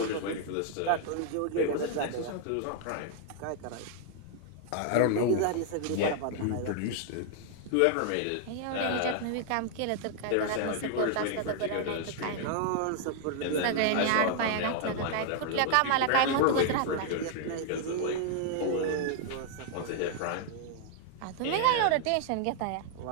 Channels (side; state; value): both; different; correlation 0.00